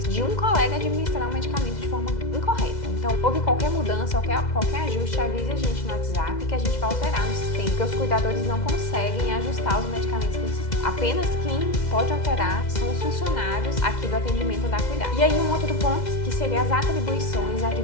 de um colega administrar o medicamento de forma incorreta. Então, houve qualquer mudança, qualquer ajuste, avise a gente no WhatsApp que a gente vai alterar no sistema, porque os cuidadores não conseguem ajustar os medicamentos no sistema. Apenas quem pode alterar são os funcionários aqui do atendimento da Cuidade. E aí um outro ponto que seria as atribuições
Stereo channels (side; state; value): right; late; 2.0 ms